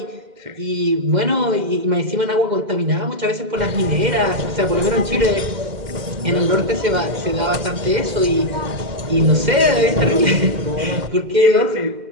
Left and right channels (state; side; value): late; left; 2.1 ms